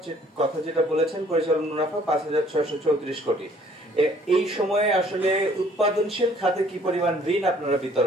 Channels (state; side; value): normal; both; correlation 0.59